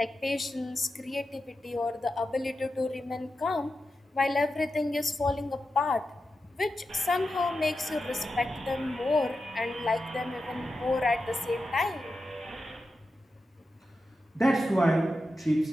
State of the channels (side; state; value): both; normal; correlation 0.90